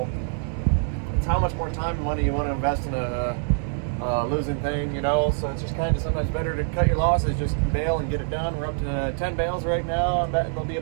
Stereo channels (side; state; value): left; silent; 62 dB below the other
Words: It's how much more time and money you want to invest in a losing thing, you know. So it's just kind of sometimes better to cut your losses, just bale and get it done. We're up to 10 bales right now. I'm betting there'll be